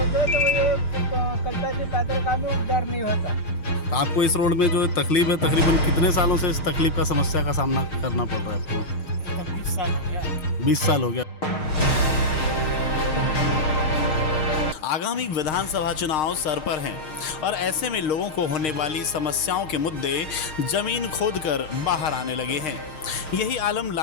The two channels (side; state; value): right; late; 6.5 ms